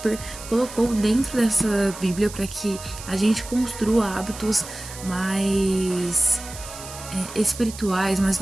colocou dentro dessa Bíblia para que a gente construa hábitos mais espirituais, mais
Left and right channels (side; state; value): right; noise; hiss, 13 dB below the sound